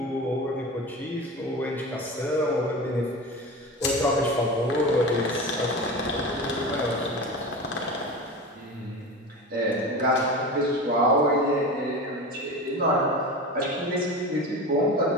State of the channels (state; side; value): normal; both; correlation 0.29